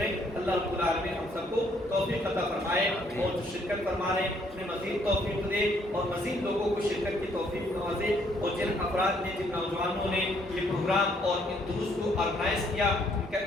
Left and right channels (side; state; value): both; normal; correlation 0.67